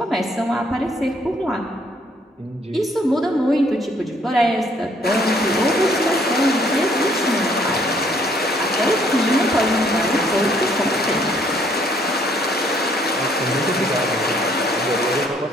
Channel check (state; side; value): normal; both; correlation 0.65